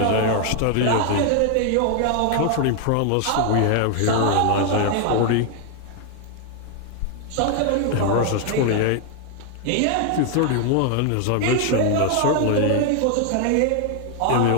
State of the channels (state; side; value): different; both; correlation 0.00